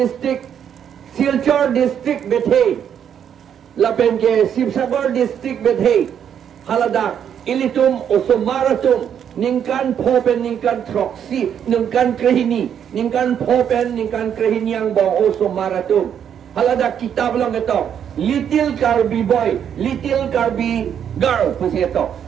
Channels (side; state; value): left; quieter; 8.7 dB